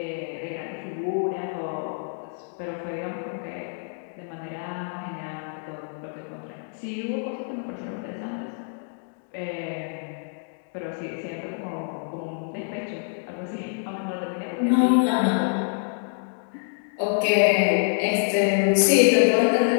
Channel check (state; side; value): silent; right; 61 dB below the other